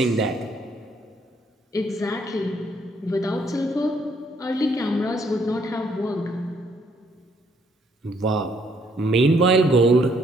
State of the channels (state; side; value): normal; both; correlation 0.68